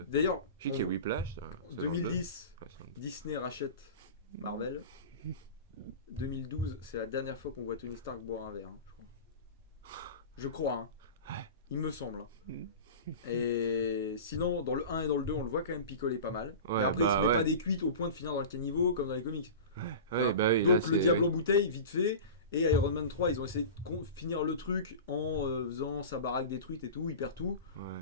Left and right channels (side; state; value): both; inverted; correlation -0.32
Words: 2. d'ailleurs, Je sais qu'il y a en Whiplash. Ça, en 2010, ouais, c'est un- Disney rachète Marvel. 2012, c'est la dernière fois qu'on voit Tony Stark boire un verre, hein, je crois. Je crois, hein. Ouais. Il me semble. hein. Mm. Et sinon, dans le 1 et dans le 2, on le voit quand même picoler pas mal. Ouais, Mais après, il bah se met ouais. pas des cuites au point de finir dans le caniveau comme dans les comics. Ouais, bah oui, Donc là, le c'est- diable oui. en bouteille, vite fait. Et Iron Man 3, ils ont essayé de finir le truc en faisant sa baraque détruite et tout, il perd tout. Ouais.